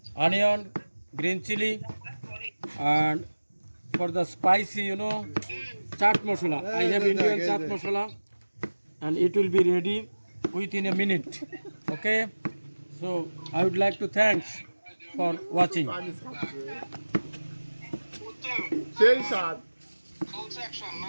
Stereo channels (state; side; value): inverted; both; correlation -1.00